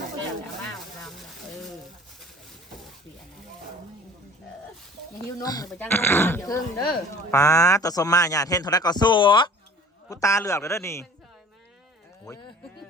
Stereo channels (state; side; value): normal; both; correlation 0.46